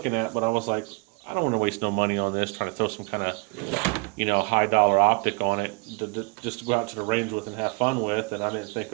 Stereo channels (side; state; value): left; quieter; 30.5 dB